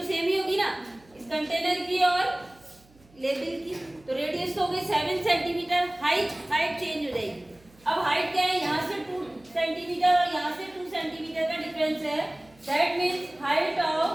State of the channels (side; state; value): right; noise; hum, 29 dB below the sound